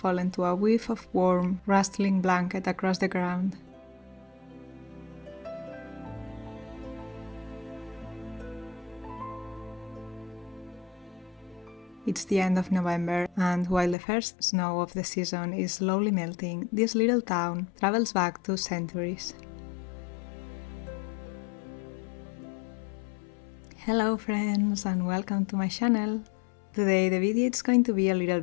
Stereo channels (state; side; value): drops out; right; at 14.0 s